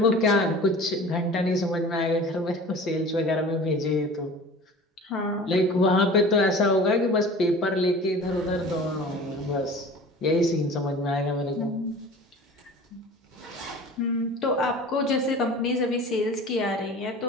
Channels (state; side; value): normal; both; correlation 0.41